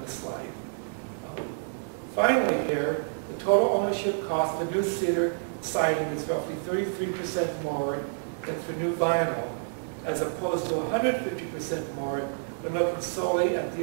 the slide. Finally here, the total ownership cost for new cedar siding is roughly 33% more than for new vinyl, as opposed to 150% more when looking solely at the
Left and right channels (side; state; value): left; silent; 59 dB below the other